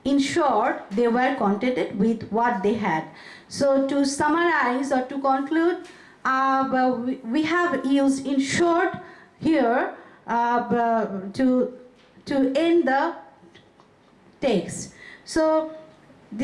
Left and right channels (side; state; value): both; identical; correlation 1.00